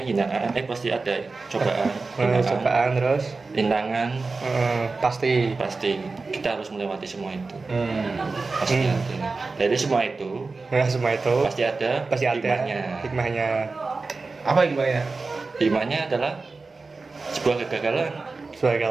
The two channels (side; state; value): left; quieter; 3.9 dB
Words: hinaan, pasti ada cobaan, Cobaan terus. rintangan, Pasti. pasti kita harus melewati semua itu. Hmm. Pasti ada. Dari semua itu Nah, semua itu pasti ada hikmahnya. hikmahnya. Apa gimana? Hikmahnya adalah sebuah kegagalan.